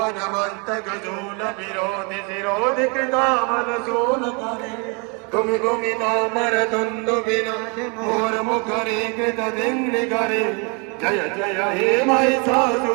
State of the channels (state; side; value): quieter; left; 33.3 dB